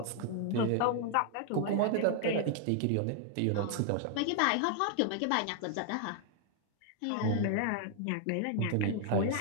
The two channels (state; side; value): different; both; correlation 0.00